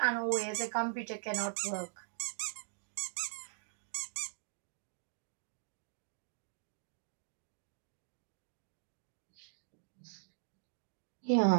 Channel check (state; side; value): silent; left; digital silence